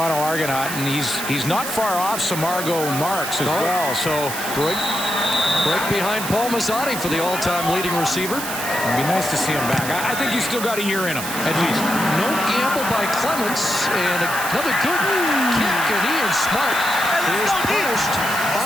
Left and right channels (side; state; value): right; noise; hiss, 6 dB below the sound